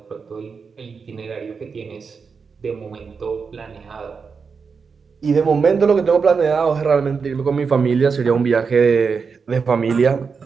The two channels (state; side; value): quieter; left; 5.4 dB